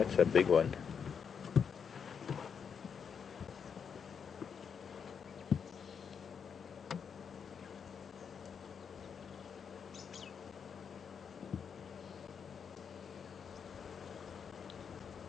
a big one.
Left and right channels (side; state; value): right; quieter; 6.8 dB